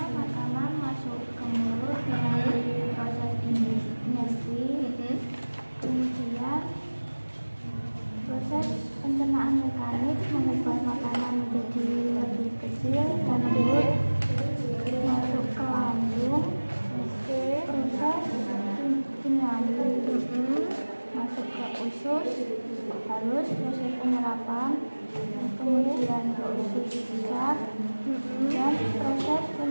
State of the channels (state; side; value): inverted; both; correlation -1.00